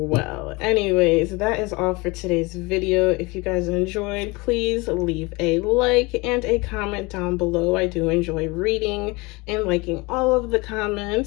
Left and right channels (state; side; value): quieter; right; 25.1 dB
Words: Anyways, that is all for today's video. If you guys enjoyed, please leave a like and a comment down below. I do enjoy reading and liking all of the